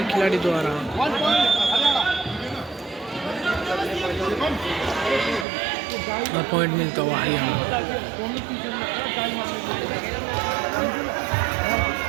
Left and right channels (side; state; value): left; drops out; at 5.5 s